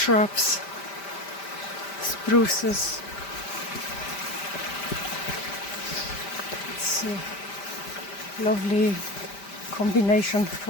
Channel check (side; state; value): right; late; 5.1 ms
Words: spruces. It's a lovely combination